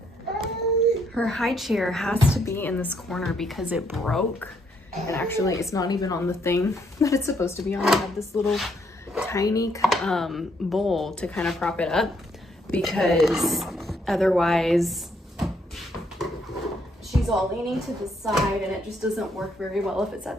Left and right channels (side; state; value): both; normal; correlation 0.72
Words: Her high chair has to be in this corner because it broke. And actually, it's not even on the thing that it's supposed to be on. I have this little tiny bowl to kind of prop it up because otherwise she's all leaning to the side and it just doesn't work very well if it's